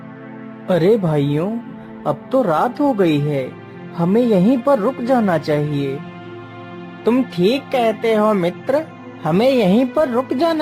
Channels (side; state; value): both; identical; correlation 1.00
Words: अरे भाइयों, अब तो रात हो गई है, हमें यहीं पर रुक जाना चाहिए। तुम ठीक कहते हो मित्र, हमें यहीं पर रुक